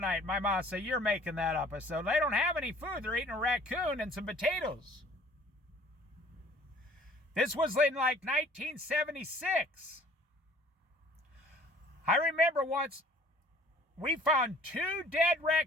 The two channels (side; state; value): both; normal; correlation 0.53